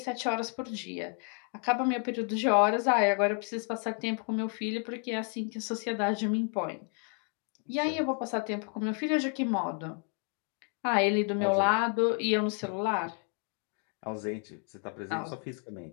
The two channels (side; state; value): right; quieter; 39.8 dB